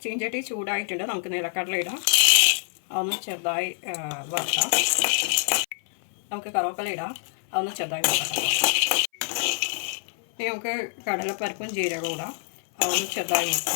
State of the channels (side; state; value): right; silent; 59 dB below the other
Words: ചീഞ്ചട്ടി ചൂടായിട്ടുണ്ട്. നമുക്ക് നിലക്കടല ഇടാം. അതൊന്ന് ചെറുതായി വറുക്കാം. നമുക്ക് കറിവേപ്പില ഇടാം. അതൊന്ന് ചെറുതായി വറുക്കാം. ഇനി നമുക്ക് കടലപ്പരിപ്പും ജീരകവും ഇടാം. അതൊന്ന് ചെറുതായി